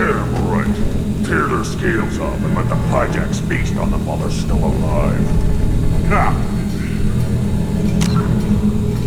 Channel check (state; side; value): identical; both; correlation 1.00